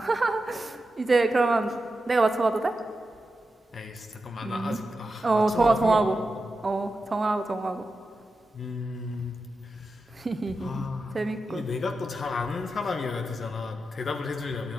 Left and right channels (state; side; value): normal; both; correlation 0.90